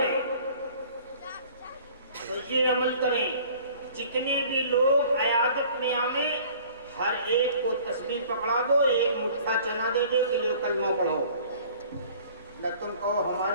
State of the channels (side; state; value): both; inverted; correlation -0.50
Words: تو یہ عمل کریں، جتنے بھی لوگ عیادت میں آئیں ہر ایک کو تسبیح پکڑا دو، ایک مٹھا چنا دے دے کہ لو کلمہ پڑھو، نہ تم کہو